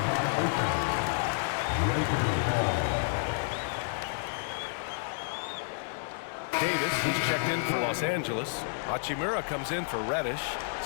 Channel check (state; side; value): silent; right; digital silence